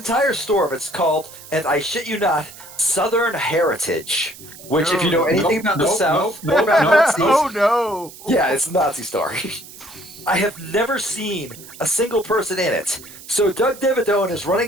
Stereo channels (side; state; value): right; noise; hiss, 18 dB below the sound